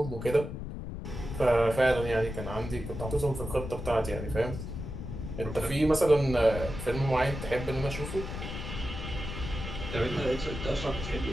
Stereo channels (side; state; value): left; noise; rumble, 7 dB below the sound